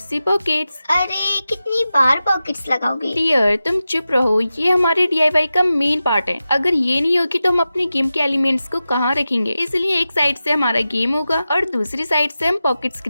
पॉकेट्स। अरे कितनी बार पॉकेट्स लगाओगे? डियर तुम चुप रहो, ये हमारे DIY का मेन पार्ट है। अगर ये नहीं होगी तो हम अपने गेम के एलिमेंट्स को कहाँ रखेंगे? इसलिए एक साइड से हमारा गेम होगा और दूसरी साइड से हम पॉकेट्स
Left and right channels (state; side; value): inverted; both; correlation -0.93